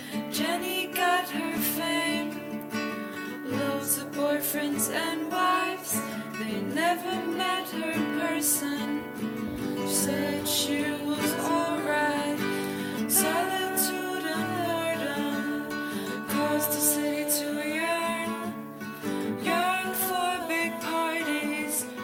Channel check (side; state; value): both; identical; correlation 1.00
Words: Jenny got her fame, loads of boyfriends and wives, they never met her in person. She said she was alright. Solitude and boredom caused the city to yearn for big parties